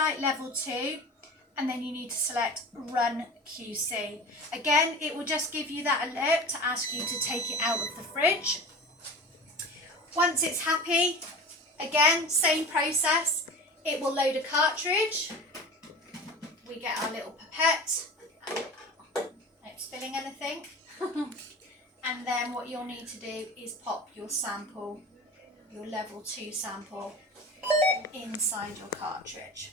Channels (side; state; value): both; normal; correlation 0.35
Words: level 2, and then you need to select run QC. Again, it will just give you that alert to ask you to take it out of the fridge. Once it's happy, again, same process. It will load a cartridge. We get our little pipette. Not spilling anything. And then what you'll need to do is pop your sample, your level 2 sample, inside your cartridge.